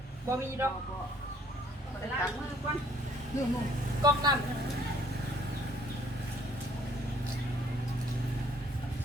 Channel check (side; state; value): both; normal; correlation 0.61